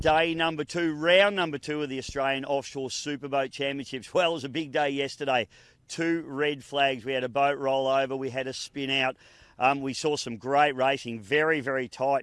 number 2, round number 2 of the Australian Offshore Superboat Championships. Well, it was a big day yesterday. 2 red flags. We had a boat roll over, we had a spin out. We saw some great racing, very, very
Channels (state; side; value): identical; both; correlation 1.00